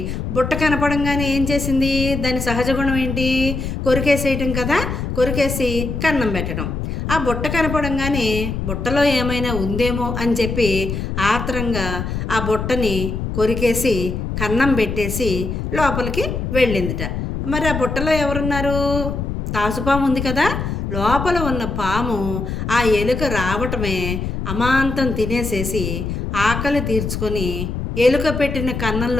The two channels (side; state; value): left; noise; rumble, 4 dB below the sound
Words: బుట్ట కనపడంగానే ఏం చేసింది? దాని సహజ గుణం ఏంటి? కొరికేసేయటం కదా. కొరికేసి కన్నం పెట్టడం. ఆ బుట్ట కనపడంగానే బుట్టలో ఏమైనా ఉందేమో అని చెప్పి ఆత్రంగా ఆ బుట్టని కొరికేసి కన్నం పెట్టేసి లోపలికి వెళ్ళిందిట. మరి ఆ బుట్టలో ఎవరున్నారు? తాసుపాము ఉంది కదా. లోపల ఉన్న పాము ఆ ఎలుక రావటమే అమాంతం తినేసేసి ఆకలి తీర్చుకొని ఎలుక పెట్టిన